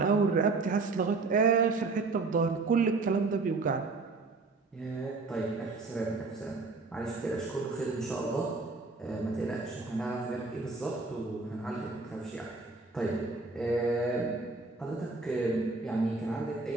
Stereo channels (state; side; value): quieter; left; 3.8 dB